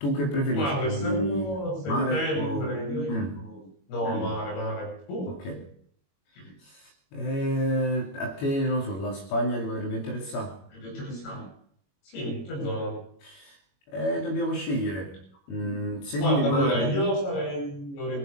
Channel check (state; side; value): late; right; 21 ms